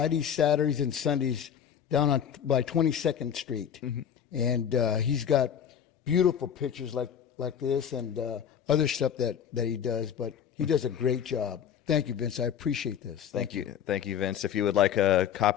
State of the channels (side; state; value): right; quieter; 8.6 dB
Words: Saturdays, and Sundays down by 22nd Street. And he's got beautiful pictures like this and other stuff that he does, but he does a great job. Thank you, Vince. I appreciate this. Thank you, Vince. If you would like a